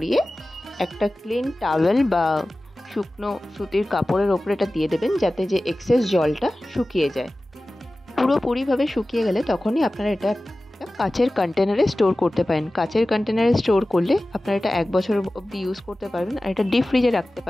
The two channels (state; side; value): normal; both; correlation 0.96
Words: একটা ক্লিন টাওয়েল বা শুকনো সুতির কাপড়ের ওপরে এটা দিয়ে দেবেন, যাতে যে এক্সেস জলটা শুকিয়ে যায়। পুরোপুরিভাবে শুকিয়ে গেলে তখনই আপনারা এটা একটা কাচের কন্টেনারে স্টোর করতে পারেন। কাচের কন্টেনারে স্টোর করলে আপনারা এটা 1 বছর অবধি ইউজ করতে পারবেন। আর এটা ডিপ ফ্রিজে